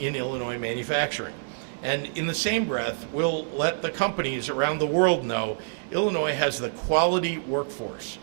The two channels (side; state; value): left; silent; digital silence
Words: Illinois manufacturing. And in the same breath, we'll let the companies around the world know Illinois has the quality workforce,